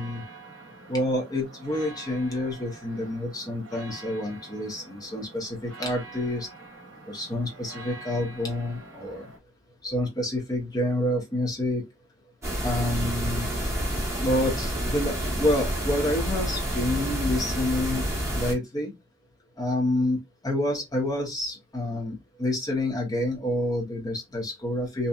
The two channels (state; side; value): normal; both; correlation 0.66